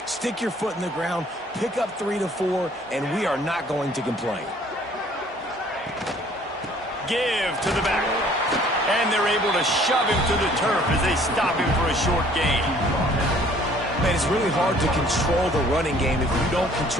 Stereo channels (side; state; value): both; normal; correlation 0.57